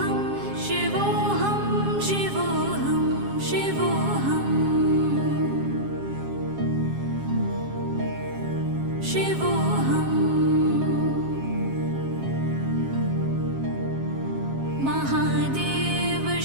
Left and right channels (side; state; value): left; late; 7.4 ms